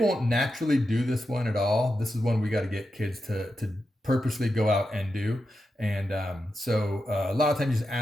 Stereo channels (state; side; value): normal; both; correlation 0.88